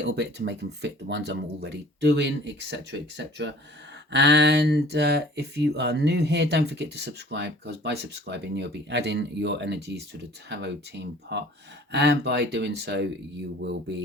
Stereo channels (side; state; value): both; normal; correlation 0.50